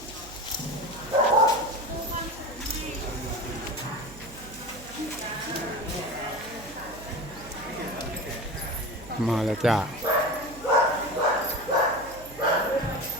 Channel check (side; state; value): right; noise; hum, 17 dB below the sound